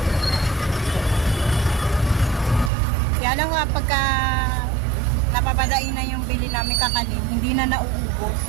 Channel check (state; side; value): drops out; left; at 2.7 s